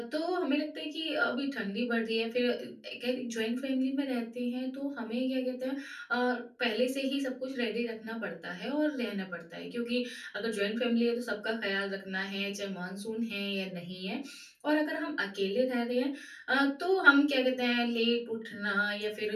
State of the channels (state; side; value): identical; both; correlation 1.00